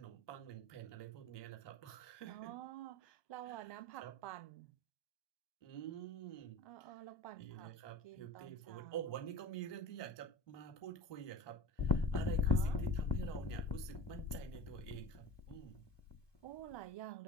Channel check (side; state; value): right; late; 1.2 ms